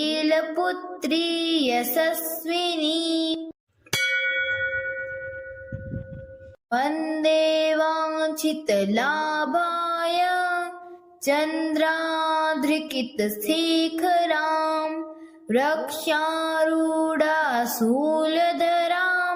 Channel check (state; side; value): identical; both; correlation 1.00